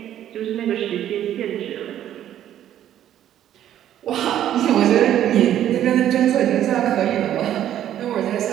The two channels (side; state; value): left; quieter; 11.3 dB